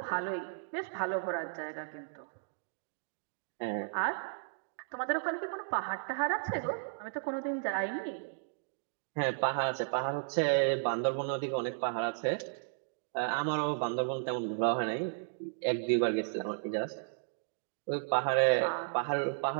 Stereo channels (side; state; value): left; silent; digital silence